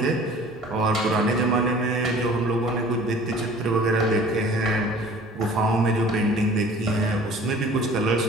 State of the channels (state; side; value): normal; both; correlation 0.48